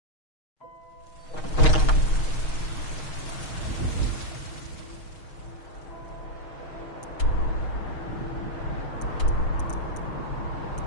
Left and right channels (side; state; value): right; late; 6.4 ms